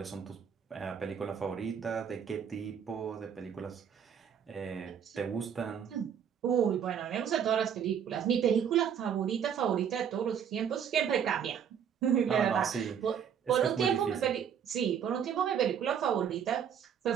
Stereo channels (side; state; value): left; quieter; 8.1 dB